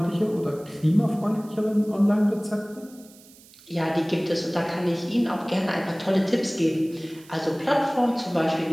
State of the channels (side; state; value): right; noise; hiss, 24 dB below the sound